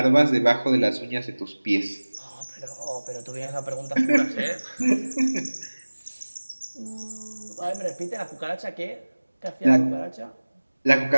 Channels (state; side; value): inverted; both; correlation -1.00